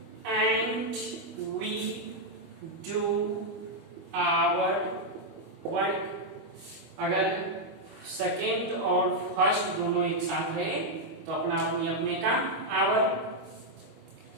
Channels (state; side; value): late; left; 25 ms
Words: and we do our work. अगर सेकेंड और फर्स्ट दोनों एक साथ रहे तो अपना अपनी अपने का आवर।